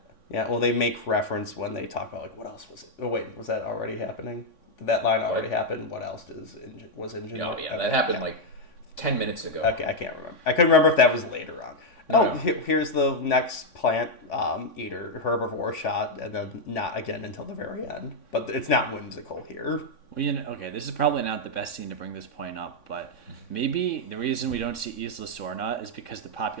Yeah, well, they make reference when they talk about, like, what else was it? Oh, wait, was that already happening? Did that line already happen? What else was InGen? Oh, yeah, that happened, like, 10 minutes ago. Okay, I can't remember. I couldn't remember if that was later on. No. Here's the next plant eater, herbivore shot, and then not again until the very end. But it's not whimsical here. Well, this is probably not the best scene to bring this point up, but maybe the reason we don't see Isla Sorna is because the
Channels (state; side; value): late; right; 3.5 ms